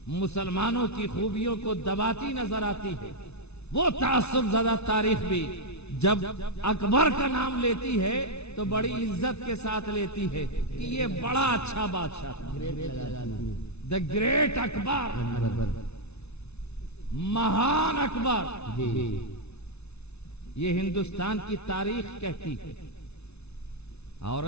مسلمانوں کی خوبیوں کو دباتی نظر آتی ہے, وہ تعصب زدہ تاریخ بھی جب اکبر کا نام لیتی ہے تو بڑی عزت کے ساتھ لیتی ہے کہ یہ بڑا اچھا بادشاہ تھا. دا گریٹ اکبر, مہان اکبر, یہ ہندوستان کی تاریخ کہتی ہے.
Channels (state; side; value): late; right; 0.80 ms